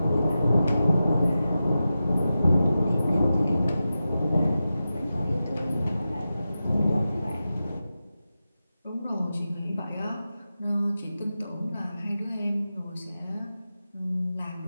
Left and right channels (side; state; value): both; inverted; correlation -0.92